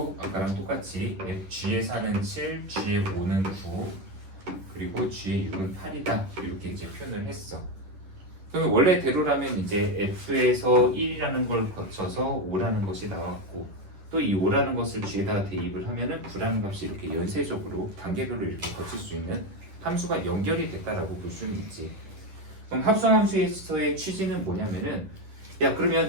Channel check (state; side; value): late; left; 10 ms